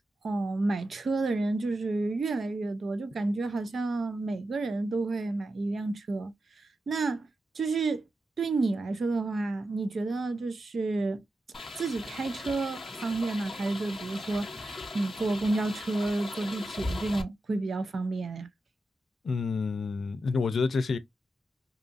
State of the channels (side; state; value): both; normal; correlation 0.89